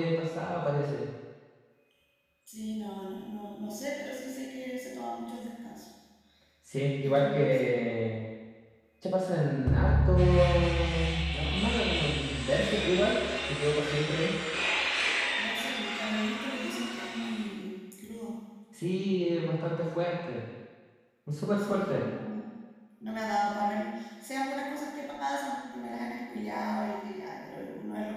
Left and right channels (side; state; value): both; identical; correlation 1.00